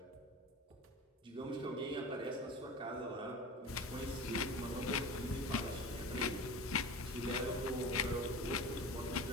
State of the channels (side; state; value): both; normal; correlation 0.33